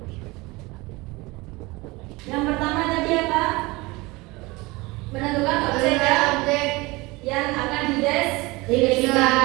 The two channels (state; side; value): quieter; left; 23.0 dB